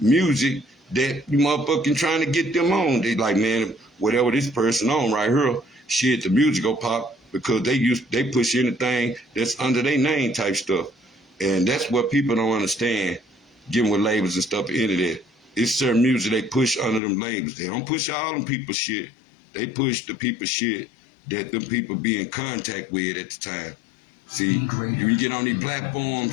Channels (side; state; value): right; drops out; at 17.0 s